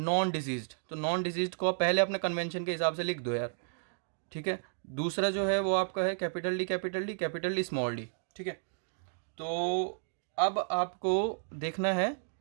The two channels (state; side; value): silent; left; digital silence